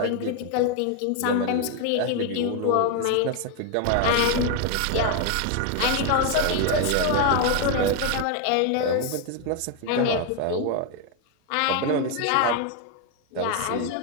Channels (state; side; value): different; both; correlation 0.01